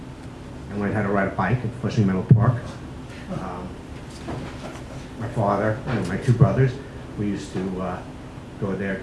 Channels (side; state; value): both; identical; correlation 1.00